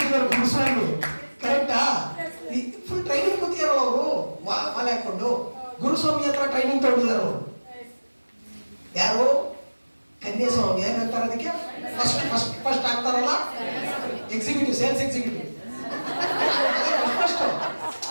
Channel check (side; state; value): both; inverted; correlation -1.00